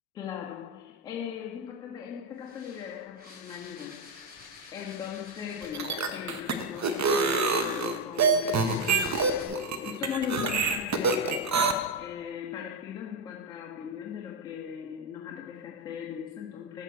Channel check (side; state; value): both; normal; correlation 0.05